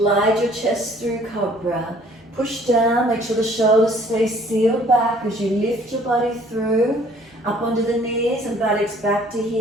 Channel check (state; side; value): normal; both; correlation 0.57